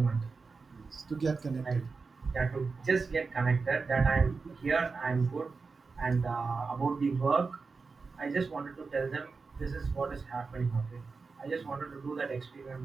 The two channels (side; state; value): left; quieter; 4.5 dB